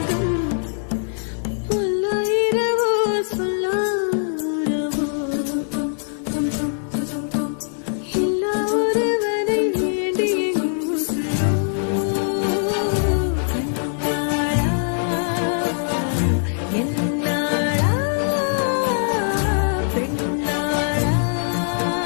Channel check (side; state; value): right; silent; digital silence